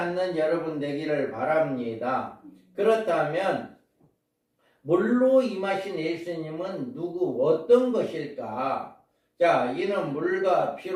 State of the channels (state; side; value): identical; both; correlation 1.00